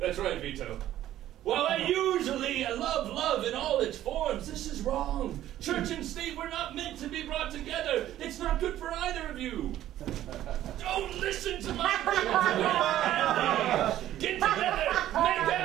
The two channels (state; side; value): quieter; left; 12.9 dB